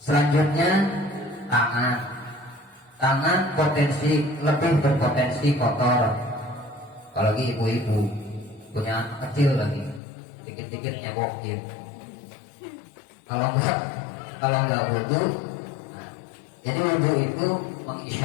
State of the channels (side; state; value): right; drops out; at 10.0 s